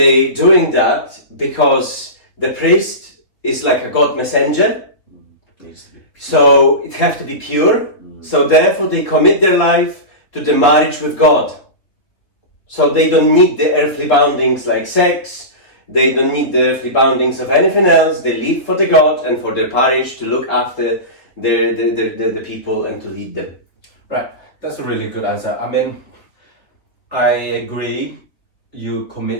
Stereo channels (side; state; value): right; late; 3.3 ms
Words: doing that because the priest is like a God messenger, Needs to be. so it have to be pure. So therefore they commit their life to the marriage with God. So they don't need the earthly boundings like sex, they don't need the earthly boundings of anything else. They live for the God and for their parish to look after the people and to lead them. Right. That's a really good answer. I mean, I agree. You